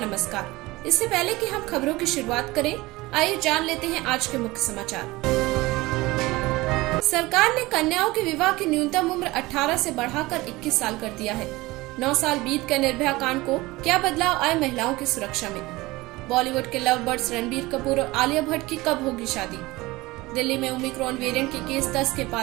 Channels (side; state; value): left; quieter; 20.6 dB